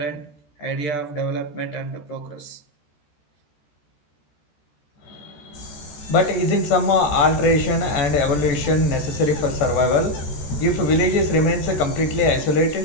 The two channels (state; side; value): late; right; 14 ms